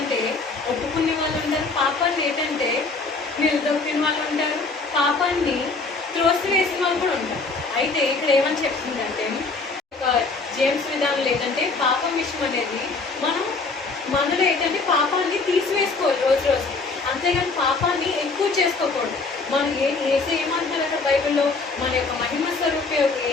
ఒప్పుకునే వాళ్ళు ఉంటారు, పాపాన్ని ఏంటంటే నిలదొక్కిన వాళ్ళు ఉంటారు, పాపాన్ని త్రోసివేసిన వాళ్ళు కూడా ఉంటారు. అయితే ఇక్కడ ఏమని చెప్తుందంటే జేమ్స్ విధానంలో ఏంటంటే పాపం విషయం అనేది మనలో ఏంటంటే పాపాన్ని తీసివేసుకోవాలి రోజు రోజు, అంతేగాని పాపాన్ని ఎక్కువ చేసుకోకూడదు. మనం ఏమంటారు అక్కడ బైబిల్లో మన యొక్క మహిమ స్వరూపి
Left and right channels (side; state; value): right; quieter; 3.9 dB